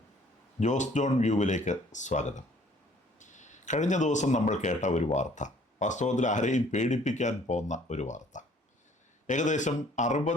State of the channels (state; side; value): normal; both; correlation 0.58